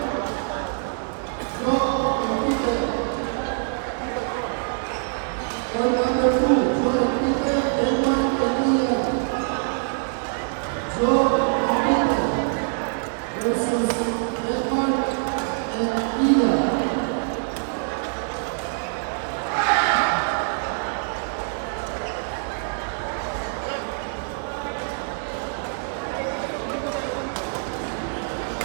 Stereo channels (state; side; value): silent; left; 62 dB below the other